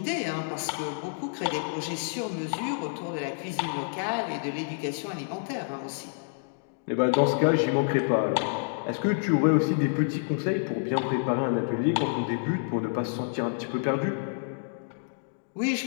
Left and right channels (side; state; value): right; silent; digital silence